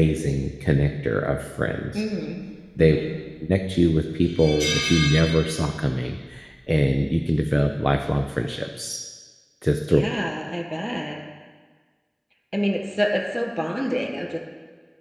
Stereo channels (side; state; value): both; identical; correlation 1.00